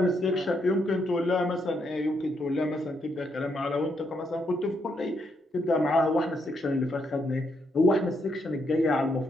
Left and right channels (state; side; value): normal; both; correlation 0.77